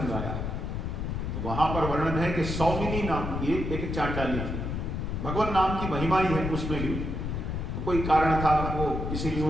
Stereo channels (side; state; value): left; noise; rumble, 3 dB below the sound